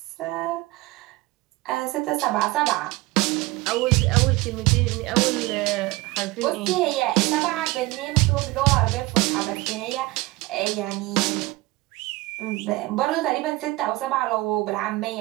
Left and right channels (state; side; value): quieter; left; 20.5 dB